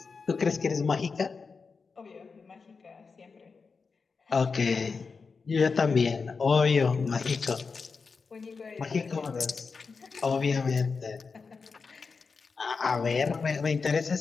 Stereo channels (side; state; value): right; quieter; 4.9 dB